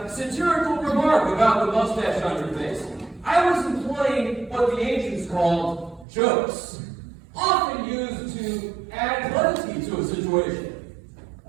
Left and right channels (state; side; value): drops out; left; at 6.1 s